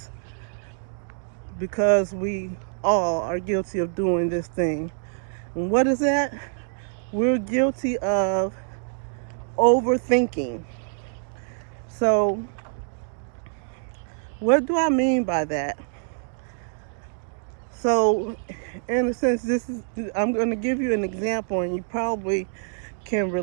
because we all are guilty of doing this thing. And what is that? We're guilty of overthinking. So, what do I mean by that? So, in a sense, I'm going to give you an example, and you probably can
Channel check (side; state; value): left; silent; digital silence